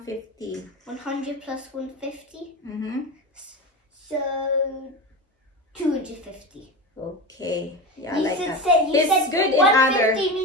100 plus 150. So 250. Okay. Yeah, You like should that. say you He's said good in 150 other.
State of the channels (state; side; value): normal; both; correlation 0.24